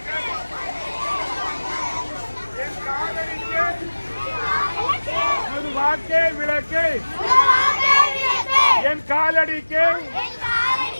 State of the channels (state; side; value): inverted; both; correlation -1.00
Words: என் காதலிக்கு ஒரு வாக்கே விளக்கு, என் காலடிக்கு